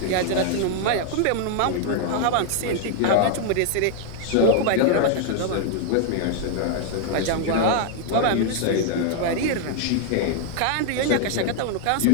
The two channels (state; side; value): different; both; correlation 0.00